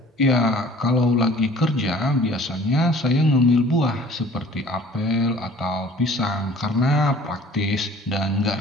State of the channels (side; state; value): both; normal; correlation 0.49